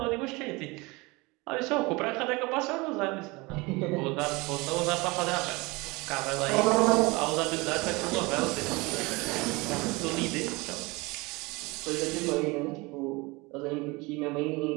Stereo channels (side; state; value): left; quieter; 24.6 dB